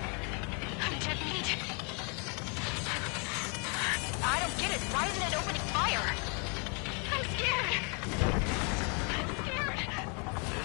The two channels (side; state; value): right; quieter; 35.9 dB